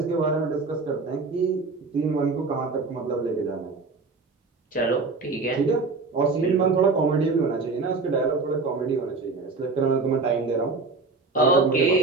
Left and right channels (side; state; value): left; quieter; 4.0 dB